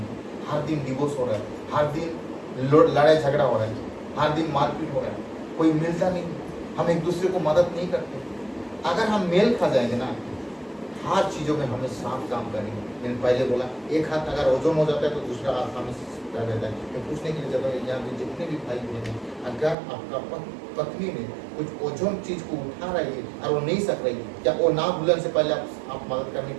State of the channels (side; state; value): left; drops out; at 19.8 s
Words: हर दिन डिवोर्स हो रहा है, हर दिन लड़ाई झगड़ा हो रहा है, हर दिन मारपीट हो रहा है, कोई मिलता नहीं, हम एक दूसरे को मदद नहीं करते। अगर हम मेल खा जाएंगे ना, हर चीजों में हमें साफ काम करेंगे। मैंने पहले बोला, एक हाथ अगर ओजन हो जाता है तो दूसरा हाथ हमें रहता है। मैं पूछने के लिए चाहता हूँ, यहाँ पे जितने भी भाई बहन हैं, अगर आपका पत्नी में कुछ ओजन चीज को उठा रही है और वो नहीं सक रही, क्या वो ना भूलने से पहले आप मदद करने